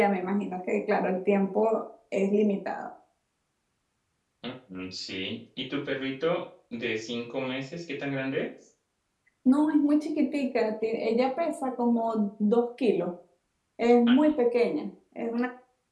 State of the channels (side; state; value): both; identical; correlation 1.00